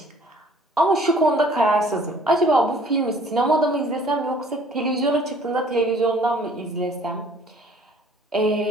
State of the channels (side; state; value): both; normal; correlation 0.56